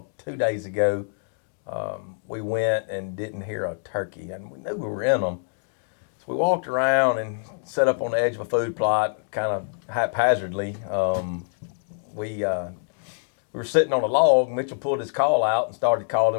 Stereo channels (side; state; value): right; silent; digital silence